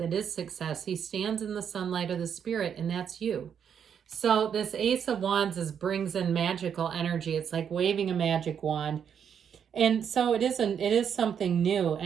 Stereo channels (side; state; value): left; quieter; 7.9 dB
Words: is success. He stands in the sunlight of the spirit, and that's you. So this Ace of Wands brings in magical energy. It's like waving a magic wand. And so it is something new,